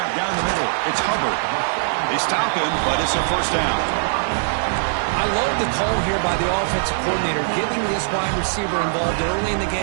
down the middle. It's Hubbard. They stop him, but it's a 1st down. I love the call here by the offensive coordinator, getting this wide receiver involved early in the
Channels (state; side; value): silent; left; digital silence